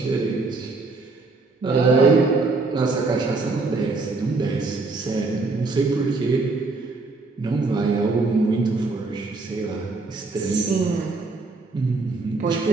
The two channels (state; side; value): quieter; left; 3.7 dB